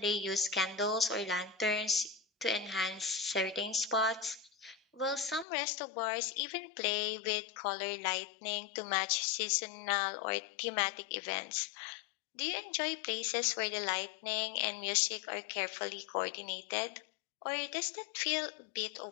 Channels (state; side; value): drops out; right; at 5.5 s